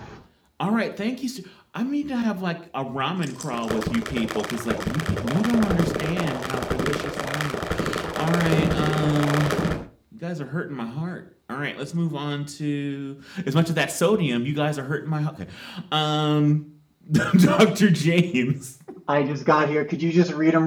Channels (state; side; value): identical; both; correlation 1.00